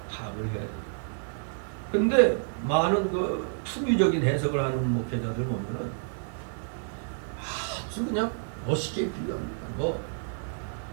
파악을 해야 돼요. 근데 많은 그 풍유적인 해석을 하는 목회자들 보면은 아주 그냥 멋있게 비유합니다.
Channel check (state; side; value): silent; left; 58 dB below the other